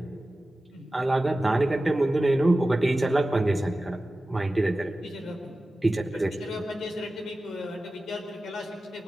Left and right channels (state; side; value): normal; both; correlation 0.95